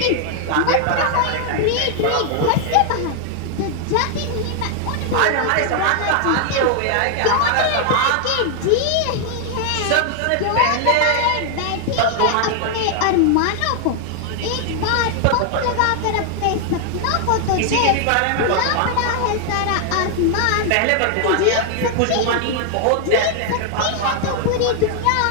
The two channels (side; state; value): both; different; correlation 0.00